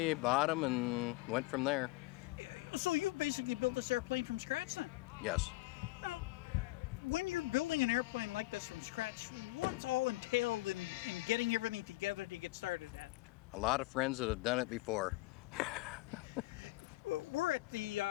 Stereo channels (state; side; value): quieter; right; 20.3 dB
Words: bought them, and went from there. So you've basically built this airplane from scratch then? Yes. Now, when you're building an airplane like this from scratch, what's all entailed in getting everything together to get started at? A lot of friends that have done it before. We're at the